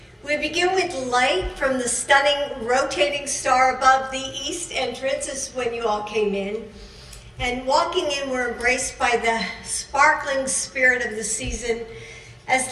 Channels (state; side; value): identical; both; correlation 1.00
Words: We begin with light from the stunning rotating star above the east entrance, is when you all came in. And walking in, we're embraced by the sparkling spirit of the season as